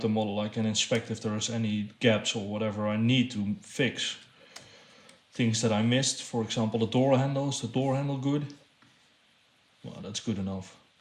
model, I can inspect if there's any gaps or whatever I need to fix. Things that I missed, for example, the door handle. Is the door handle good? Well, that's good enough.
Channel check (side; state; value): both; identical; correlation 1.00